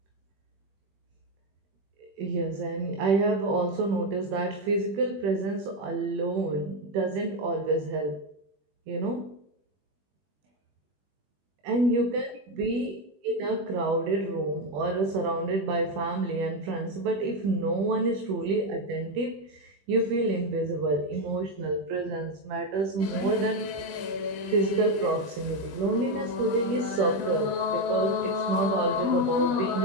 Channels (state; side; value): late; left; 20 ms